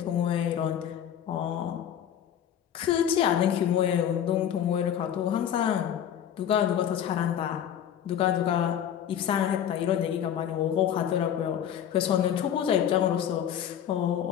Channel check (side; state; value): right; quieter; 9.7 dB